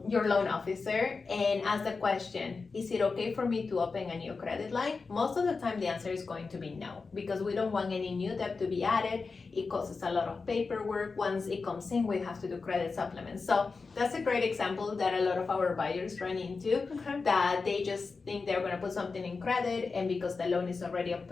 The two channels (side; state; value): right; quieter; 4.4 dB